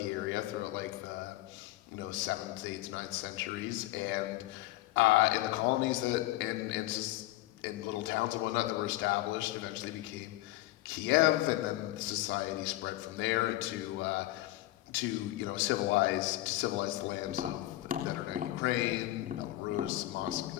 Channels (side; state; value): right; quieter; 16.9 dB